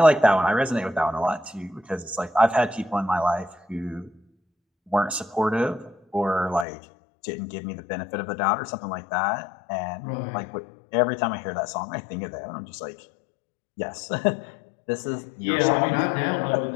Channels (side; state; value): right; drops out; at 6.7 s